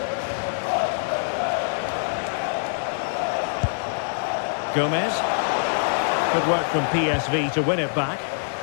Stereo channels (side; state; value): right; silent; digital silence